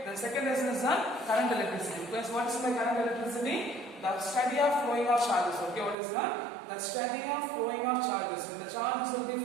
The second lesson is current electricity. Because what is the current electricity? The study of flowing of charges. Okay, what is that? The study of flowing of charges. When the charges will be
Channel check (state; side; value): drops out; left; at 6.0 s